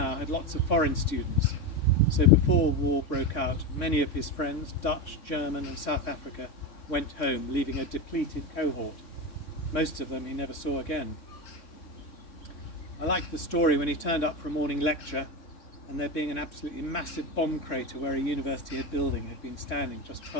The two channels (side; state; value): right; late; 3.6 ms